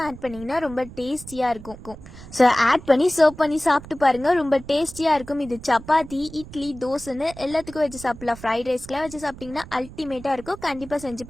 ஆட் பண்ணிங்கன்னா ரொம்ப டேஸ்டியாக இருக்கும். ஸோ ஆட் பண்ணி சர்வ் பண்ணி சாப்பிட்டு பாருங்கள், ரொம்ப டேஸ்டியாக இருக்கும். இது சப்பாத்தி, இட்லி, தோசைன்னு எல்லாத்துக்கும் வச்சு சாப்பிடலாம். ஃப்ரைட் ரைஸ்க்கெலாம் வச்சு சாப்பிட்டிங்கன்னா அல்டிமேட்டாக இருக்கும். கண்டிப்பாக செஞ்சு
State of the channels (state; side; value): noise; right; rumble, 16 dB below the sound